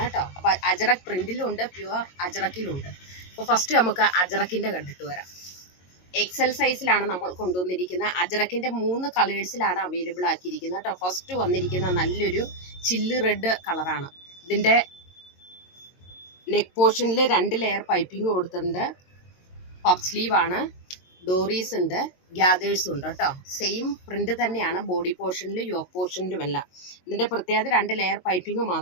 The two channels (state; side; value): late; right; 22 ms